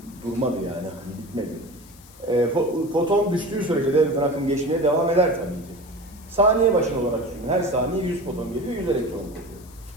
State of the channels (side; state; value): left; noise; hiss, 23 dB below the sound